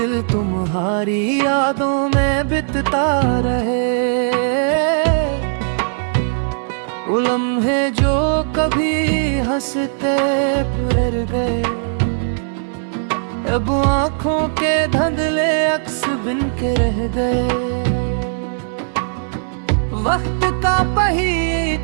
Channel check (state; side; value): silent; left; 59 dB below the other